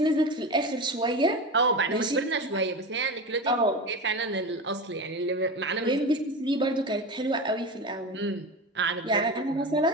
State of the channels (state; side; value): normal; both; correlation 0.25